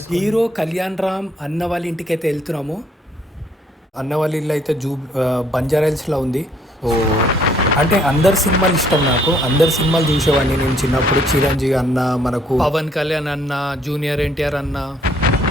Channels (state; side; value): normal; both; correlation 0.65